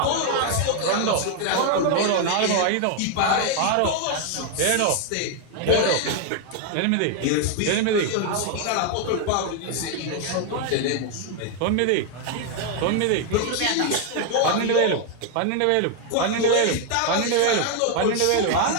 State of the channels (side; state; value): both; different; correlation 0.01